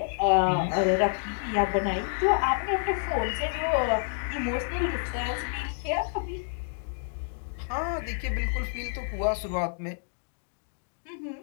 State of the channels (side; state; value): right; silent; digital silence